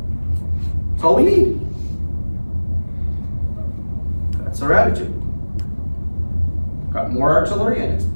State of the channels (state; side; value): inverted; both; correlation -1.00